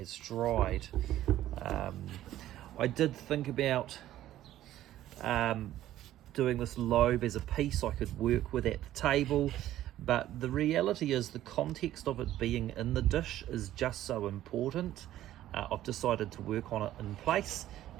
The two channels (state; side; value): quieter; left; 13.4 dB